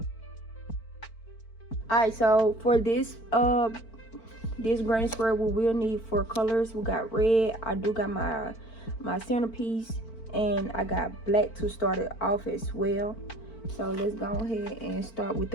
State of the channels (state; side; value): late; right; 4.5 ms